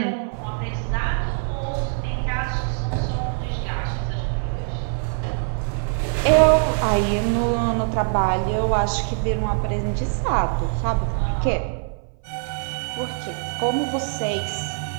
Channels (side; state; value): left; silent; 58 dB below the other